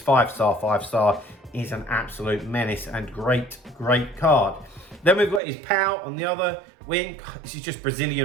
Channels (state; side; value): drops out; left; at 5.4 s